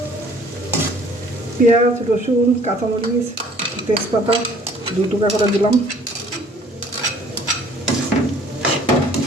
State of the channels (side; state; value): both; normal; correlation 0.55